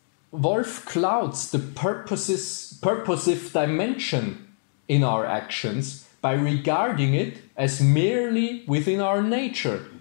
Wolff clouds the purposive dimension in our actions by regarding it as merely within our nature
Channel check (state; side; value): silent; right; digital silence